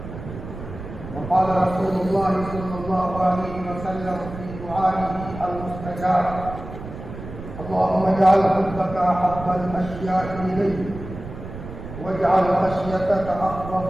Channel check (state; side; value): noise; right; rumble, 11 dB below the sound